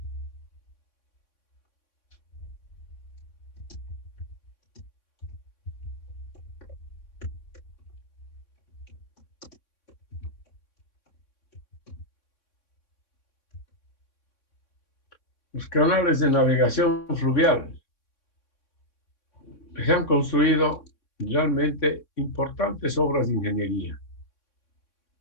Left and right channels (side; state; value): right; late; 3.6 ms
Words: los canales de navegación fluvial. Se han construido realmente importantes obras de ingeniería.